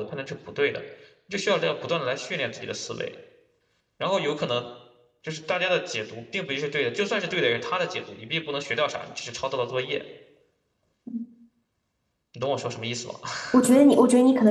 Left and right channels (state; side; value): identical; both; correlation 1.00